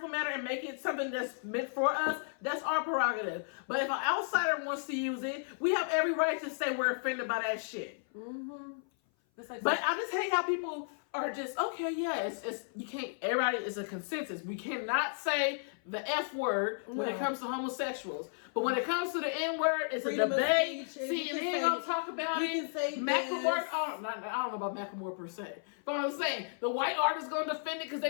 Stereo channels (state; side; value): silent; right; 55 dB below the other